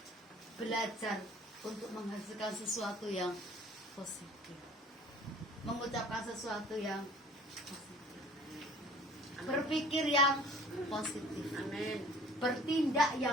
belajar untuk menghasilkan sesuatu yang positif, mengucapkan sesuatu yang positif, berpikir yang positif, Amin. bertindak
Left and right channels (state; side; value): normal; both; correlation 0.49